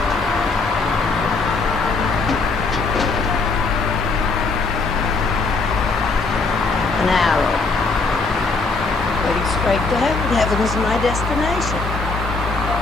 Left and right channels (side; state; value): right; quieter; 3.9 dB